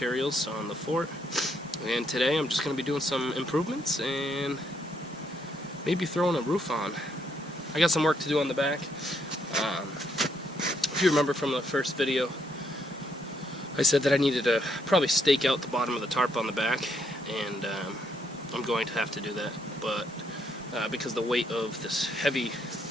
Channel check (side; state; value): both; normal; correlation 0.73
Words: on the fort. And today I'm just going to be doing some improvements and maybe throwing a roof on. I got some work to do on the back. If you remember from the first video, I said that I needed to probably stake out the bottom of the tarp on the back, and I'm going to have to do that. But because the weight of this heavy